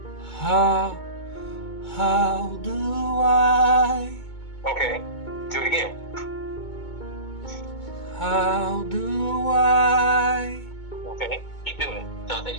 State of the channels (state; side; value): late; right; 2.2 ms